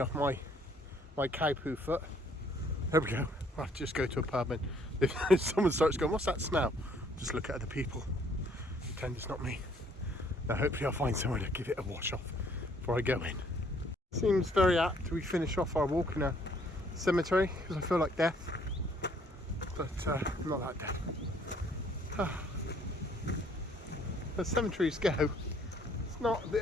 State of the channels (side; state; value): both; normal; correlation 0.63